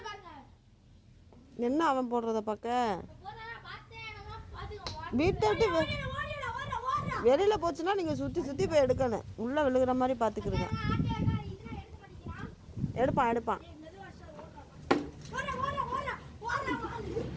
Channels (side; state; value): both; identical; correlation 1.00